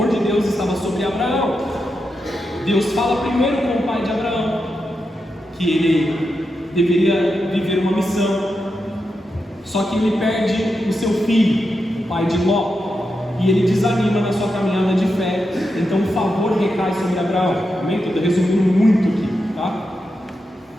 de Deus estava sobre Abraão. Deus fala primeiro com o pai de Abraão que ele deveria viver uma missão. Só que ele perde o seu filho, o pai de Ló, e ele desanima na sua caminhada de fé. Então o favor recai sobre Abraão. Amém? Estou resumindo muito aqui, tá?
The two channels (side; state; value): both; normal; correlation 0.87